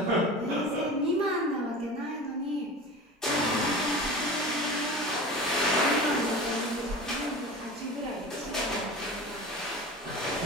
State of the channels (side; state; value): both; normal; correlation 0.34